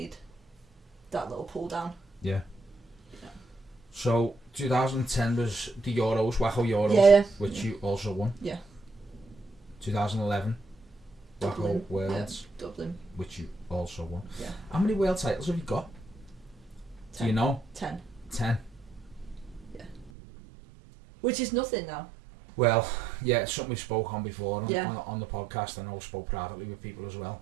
that little pull down. Yeah. So 2010 was the Euros, Waco Euros, which you also won. Yeah. 2011, Waco Worlds, Dublin, which you also won. Yeah. How many world titles have you got? 10. Do you know? 10. 10. Yeah. Which is nothing now. Well, yeah, it's something we spoke on before on the podcast. I know I spoke privately with people as well,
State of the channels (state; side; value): drops out; left; at 20.1 s